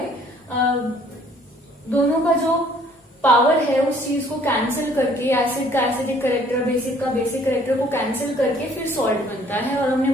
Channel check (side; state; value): both; normal; correlation 0.59